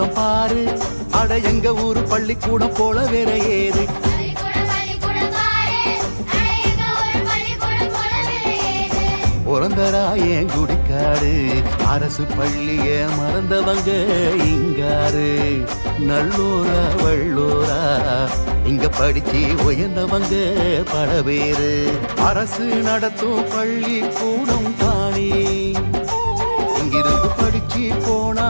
பாரு, அட எங்க ஊரு பள்ளிக்கூடம் போல வேற ஏது. பிறந்தராயன் குடிக்காடு, அரசு பள்ளிய மறந்தவங்க இங்காரு. நல்லூரா வள்ளூரா இங்க படிச்சு உயர்ந்தவங்க பல பேரு. அரசு நடத்தும் பள்ளி கூடம் தானே, இங்கிருந்து படிச்சு போனா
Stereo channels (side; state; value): both; inverted; correlation -1.00